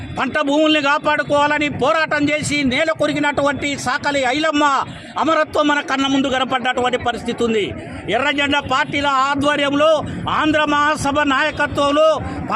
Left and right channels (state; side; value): identical; both; correlation 1.00